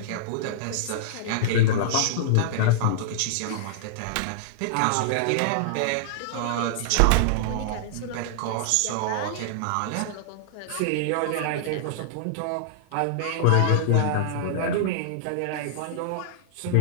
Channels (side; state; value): both; different; correlation -0.01